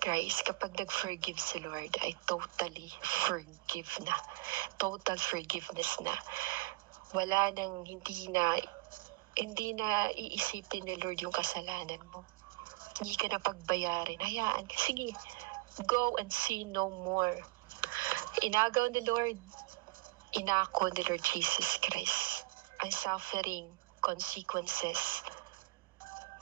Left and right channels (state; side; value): quieter; left; 22.5 dB